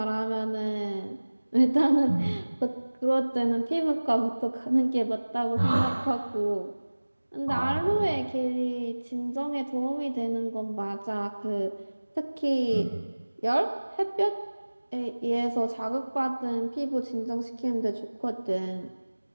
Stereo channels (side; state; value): both; inverted; correlation -1.00